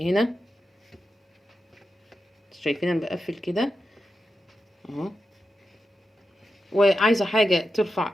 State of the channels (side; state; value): both; normal; correlation 0.89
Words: هنا. شايفين انا بقفل كده اهو. وعايزة حاجة ترفع